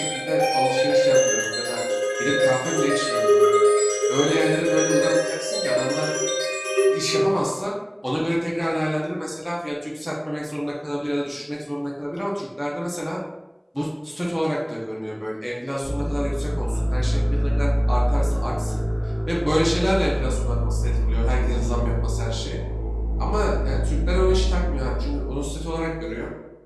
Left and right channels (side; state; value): both; identical; correlation 1.00